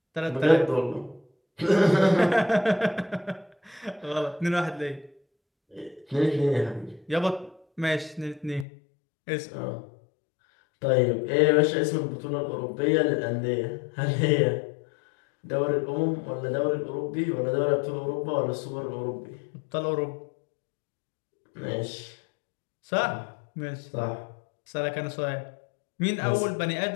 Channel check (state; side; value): drops out; right; at 8.7 s